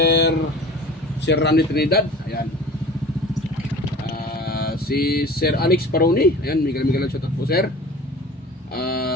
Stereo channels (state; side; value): normal; both; correlation 0.41